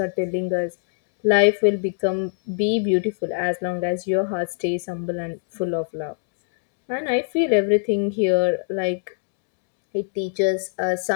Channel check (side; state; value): right; silent; digital silence